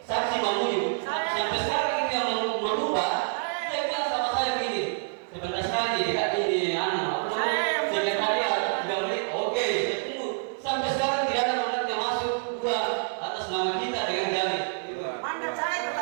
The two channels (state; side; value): silent; left; digital silence